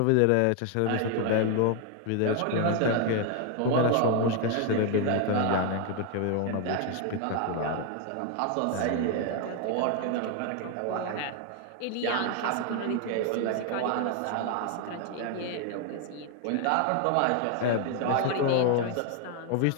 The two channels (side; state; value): both; different; correlation 0.00